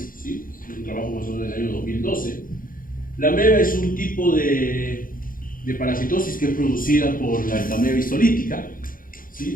¿sí? Es un trabajo más o menos del año 2012. La ameba es un tipo de parasitosis que es producida por la entameba histolítica,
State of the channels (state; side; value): late; right; 0.40 ms